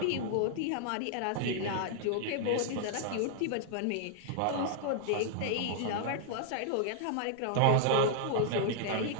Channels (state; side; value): different; both; correlation -0.01